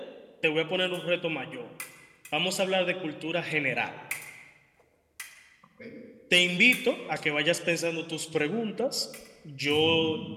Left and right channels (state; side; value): identical; both; correlation 1.00